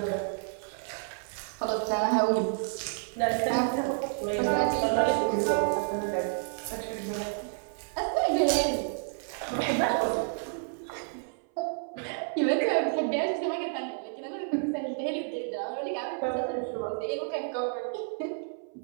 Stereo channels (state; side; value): silent; left; 58 dB below the other